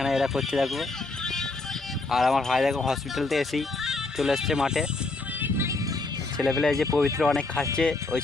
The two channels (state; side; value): quieter; right; 3.4 dB